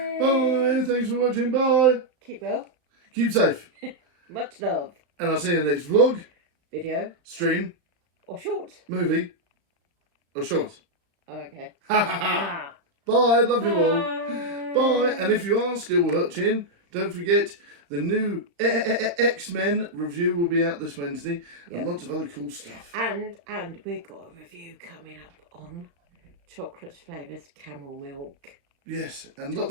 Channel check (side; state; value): left; late; 36 ms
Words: Bye. Thanks for watching. Bye. Keep well. Keep safe. Much love. And I'll see you in the next vlog, video, stream, or short, movie, or short. Okay. Bye. Love you all. Bye. And if you are still watching, don't forget the new X-Men review will be out this Wednesday. Yep. And lots of other cool stuff. And we've got a review coming up on chocolate flavoured camel milk. Yes. And chocolate